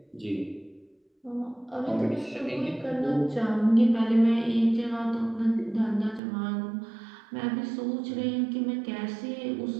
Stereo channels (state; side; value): drops out; left; at 6.2 s